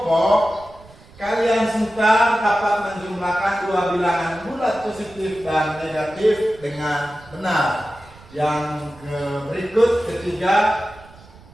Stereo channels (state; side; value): noise; right; rumble, 23 dB below the sound